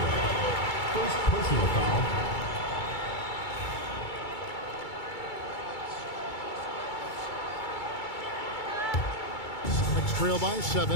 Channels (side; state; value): right; late; 2.3 ms